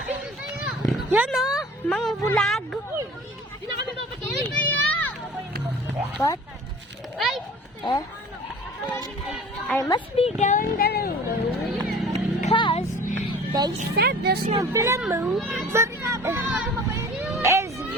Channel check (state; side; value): normal; both; correlation 0.44